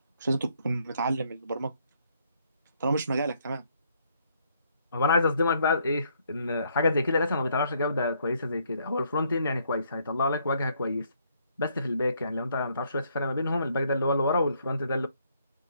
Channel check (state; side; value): inverted; both; correlation -0.69